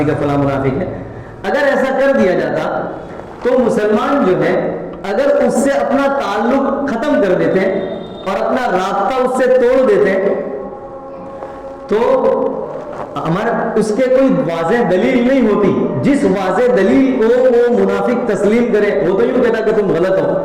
ہے، فلاں منافق ہے، اگر ایسا کر دیا جاتا تو مسلمان جو ہے اگر اس سے اپنا تعلق ختم کر دیتے اور اپنا رابطہ اس سے توڑ دیتے تو ہمارا اس کے کوئی واضح دلیل نہیں ہوتی. جس واضح دلیل کو وہ منافق تسلیم کرے، وہ تو یوں کہتا کہ تم غلط ہو،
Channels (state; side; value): identical; both; correlation 1.00